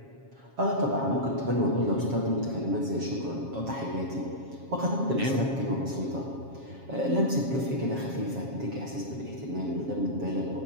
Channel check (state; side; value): late; left; 7.4 ms